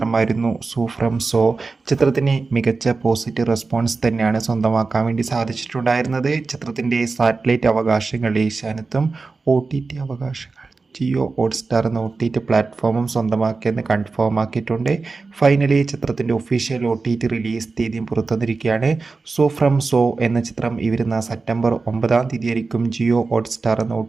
സൂ ഫ്രം സോ. ചിത്രത്തിന് മികച്ച പോസിറ്റീവ് റെസ്പോൺസ് തന്നെയാണ് സ്വന്തമാക്കാൻ വേണ്ടി സാധിച്ചിട്ടുണ്ടായിരുന്നത്. ചിത്രത്തിൻ്റെ സാറ്റലൈറ്റ് അവകാശങ്ങൾ ഏഷ്യാനെറ്റും OTT അവകാശങ്ങൾ ജിയോ ഹോട്ട്സ്റ്റാർ എന്ന OTT പ്ലാറ്റ്ഫോമും സ്വന്തമാക്കിയെന്ന് കൺഫേം ആക്കിയിട്ടുണ്ട്. ഫൈനലി ചിത്രത്തിൻ്റെ ഒഫീഷ്യൽ OTT റിലീസ് തീയതിയും പുറത്തുവന്നിരിക്കുകയാണ്. സൂ ഫ്രം സോ എന്ന ചിത്രം ഈ വരുന്ന സെപ്റ്റംബർ 9-ാം തീയതി ആയിരിക്കും ജിയോ ഹോട്ട്സ്റ്റാർ എന്ന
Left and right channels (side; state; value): left; quieter; 4.1 dB